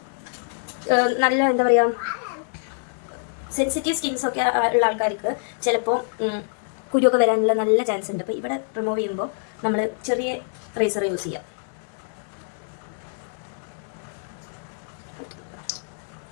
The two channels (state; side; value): silent; right; 58 dB below the other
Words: നല്ല എന്താ പറയുക, സെൻസിറ്റീവ് സ്കിൻസൊക്കെ ഉള്ള ആൾക്കാർക്ക് ചിലപ്പോൾ കുരുവൊക്കെ വരാനുള്ള നല്ല ചാൻസ് ഉണ്ട്. അപ്പോൾ ഇവിടെ റിമൂവ് ചെയ്യുമ്പോൾ നമ്മൾ ചെറിയ റേസർ യൂസ് ചെയ്യാം.